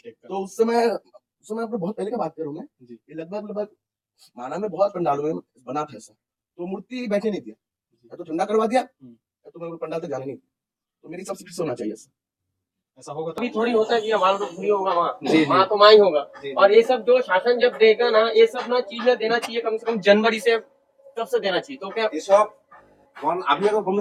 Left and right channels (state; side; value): identical; both; correlation 1.00